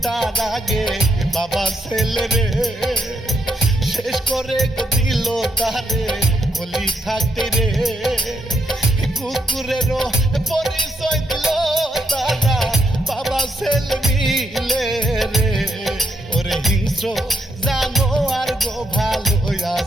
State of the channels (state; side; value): normal; both; correlation 0.80